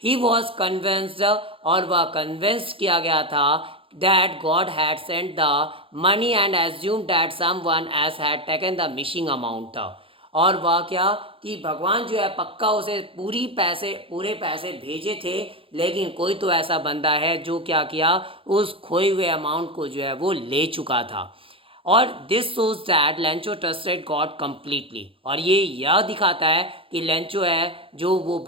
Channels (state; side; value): late; left; 0.26 ms